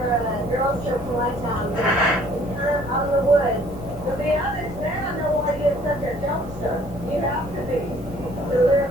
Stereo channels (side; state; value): left; noise; rumble, 15 dB below the sound